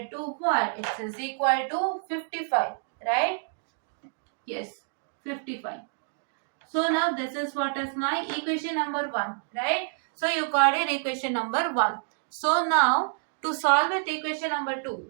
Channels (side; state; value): left; silent; digital silence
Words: to what? It is equal to 55, right? Yes, 55. So now this is what is my equation number 1, right? So you got it, equation number 1. So now to solve with equation number 2.